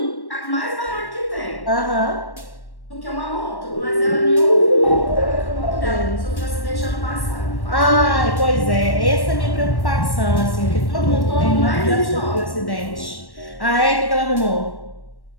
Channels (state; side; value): late; right; 1.1 ms